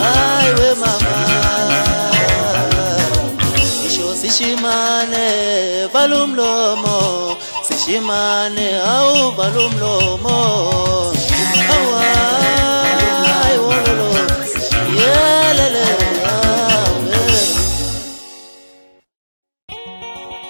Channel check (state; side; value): inverted; both; correlation -1.00